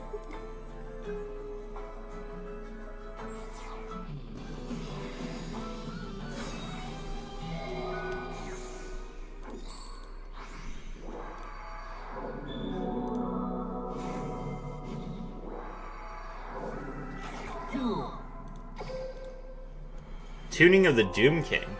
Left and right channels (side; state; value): both; identical; correlation 1.00